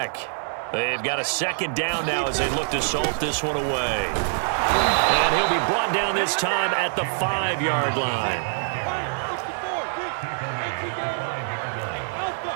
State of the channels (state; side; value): silent; left; digital silence